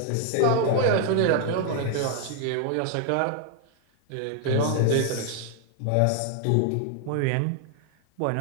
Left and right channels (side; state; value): both; different; correlation 0.00